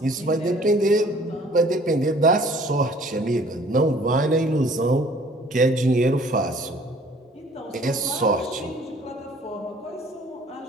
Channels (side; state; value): both; normal; correlation 0.55